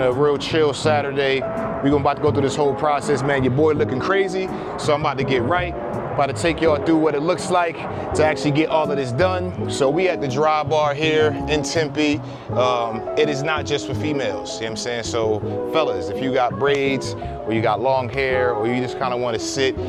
a real chill Saturday. We about to go through this whole process, man. Your boy looking crazy, so I'm about to get right. About to take y'all through what it looks like to actually get all of this done. So we at the Dry Bar here in Tempe. It is not just for females, you know what I'm saying? So fellas, if you got braids or you got long hair or you just kind of want to sit,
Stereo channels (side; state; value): both; identical; correlation 1.00